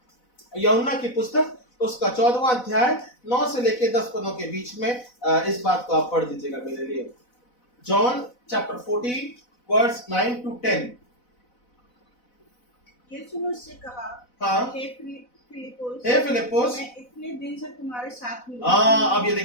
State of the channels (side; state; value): right; late; 4.0 ms